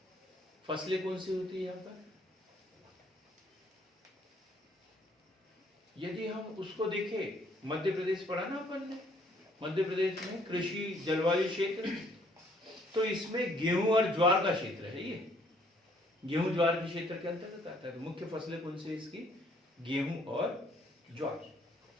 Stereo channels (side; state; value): both; normal; correlation 0.63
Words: फसलें कौन सी होती है यहाँ पर? यदि हम उसको देखें, मध्य प्रदेश पढ़ा ना अपन ने, मध्य प्रदेश में कृषि जलवायु क्षेत्र, तो इसमें गेहूं और ज्वार का क्षेत्र है। ये गेहूं ज्वार के क्षेत्र के अंतर्गत आता है। तो मुख्य फसलें कौन सी इसकी? गेहूं और ज्वार।